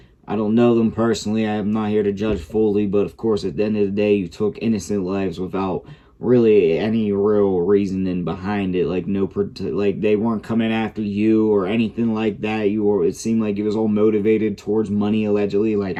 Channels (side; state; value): both; identical; correlation 1.00